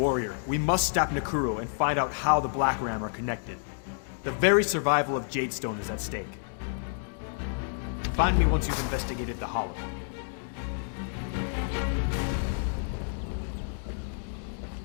Warrior, we must stop Nekuro and find out how the Black Ram are connected. The very survival of Jadestone is at stake. Find me once you've investigated the Hollow.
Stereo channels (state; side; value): silent; right; digital silence